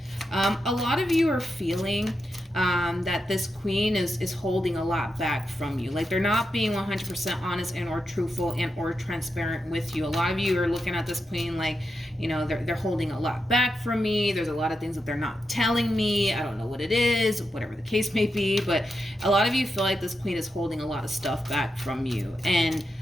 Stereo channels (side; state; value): both; normal; correlation 0.87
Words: a lot of you are feeling that this queen is holding a lot back from you. Like, they're not being 100% honest and or truthful and or transparent with you. A lot of you are looking at this queen like, you know, they're holding a lot back from me. There's a lot of things that they're not telling me. I don't know what it is, whatever the case may be. But a lot of you feel like this queen is holding a lot of stuff back from you. And